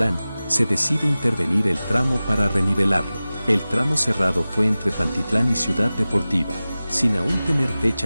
se decide intervenir el tramo para renivelarlo. El tramo cerrado fue entre Pantitlán y Ciudad Deportiva, sin aún tener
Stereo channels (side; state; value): both; inverted; correlation -0.97